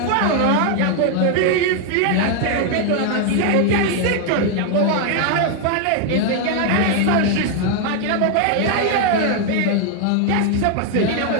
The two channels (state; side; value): different; both; correlation 0.00